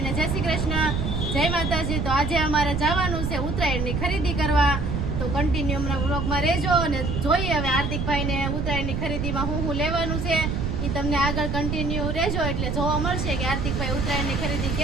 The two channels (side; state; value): right; noise; rumble, 1 dB below the sound